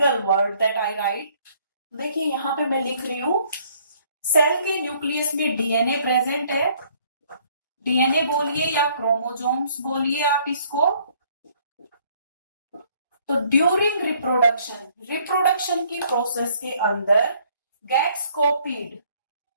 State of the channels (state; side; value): inverted; both; correlation -0.62